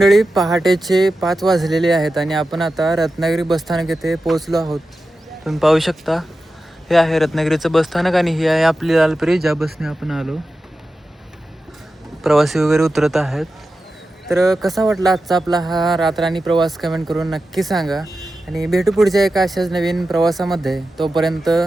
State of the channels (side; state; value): both; normal; correlation 0.92